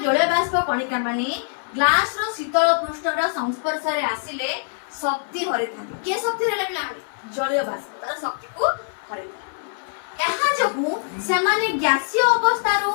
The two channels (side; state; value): right; silent; 56 dB below the other